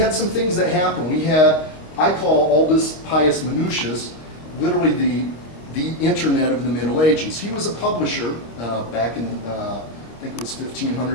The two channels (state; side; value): late; right; 26 ms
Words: some things that happened. We had, I call Aldous Pius Manutius, literally the internet of the Middle Ages. He was a publisher back in, I think it was